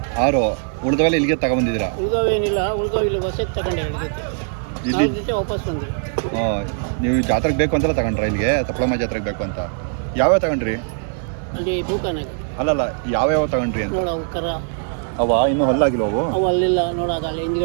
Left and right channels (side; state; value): left; silent; 65 dB below the other